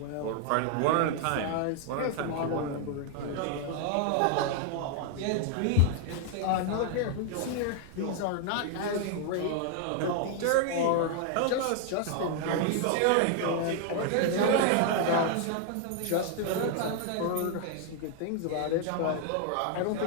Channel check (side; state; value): both; different; correlation 0.00